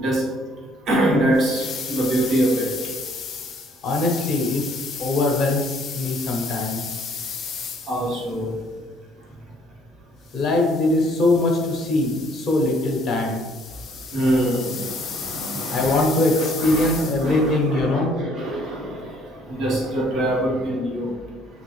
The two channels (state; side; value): normal; both; correlation 0.63